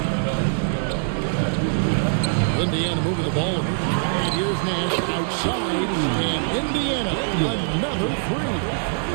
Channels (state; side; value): silent; left; 62 dB below the other